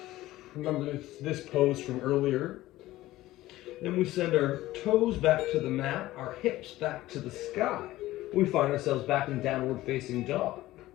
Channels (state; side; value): quieter; right; 16.4 dB